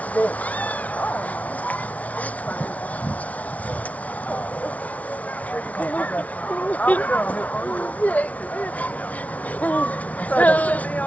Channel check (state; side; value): late; right; 0.069 ms